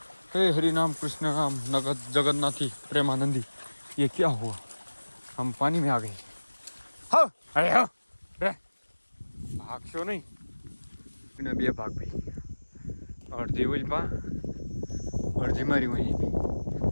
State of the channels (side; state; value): both; inverted; correlation -1.00